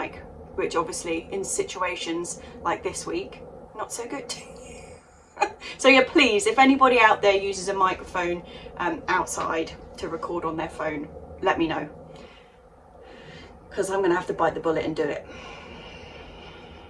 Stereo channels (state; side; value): identical; both; correlation 1.00